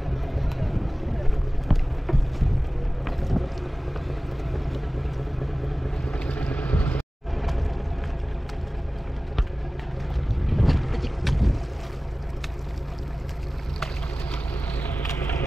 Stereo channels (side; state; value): both; normal; correlation 0.97